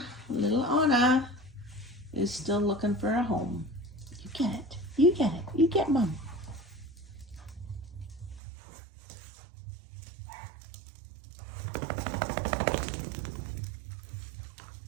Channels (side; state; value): left; drops out; at 8.4 s